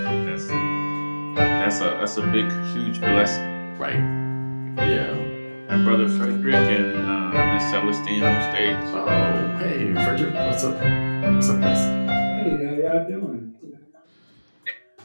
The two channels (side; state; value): both; inverted; correlation -1.00